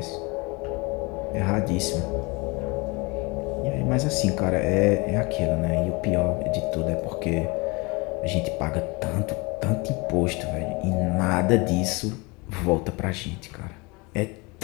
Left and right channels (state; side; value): quieter; right; 27.2 dB